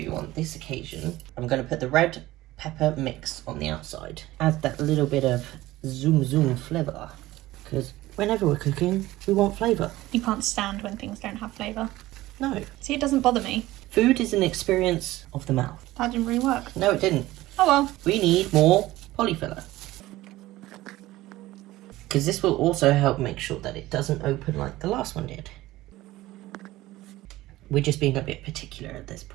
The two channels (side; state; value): left; quieter; 17.2 dB